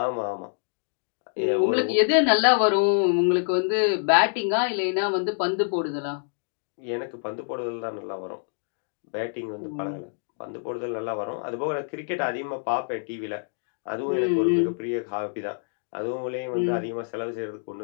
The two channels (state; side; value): silent; right; digital silence